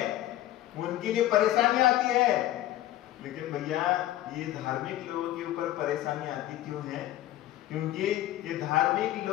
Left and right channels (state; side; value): quieter; right; 14.2 dB